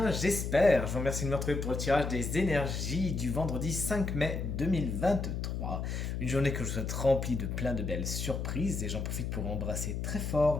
j'espère. Je vous remercie de me retrouver pour le tirage des énergies du vendredi 5 mai 2023. Une journée que je vous souhaite remplie de plein de belles surprises et j'en profite pour embrasser très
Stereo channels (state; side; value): noise; left; hum, 3 dB below the sound